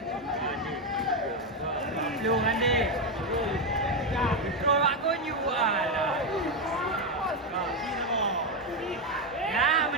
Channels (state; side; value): normal; both; correlation 0.07